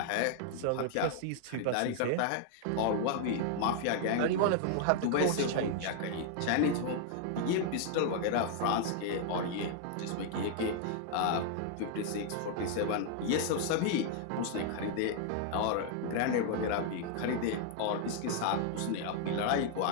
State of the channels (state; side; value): different; both; correlation 0.00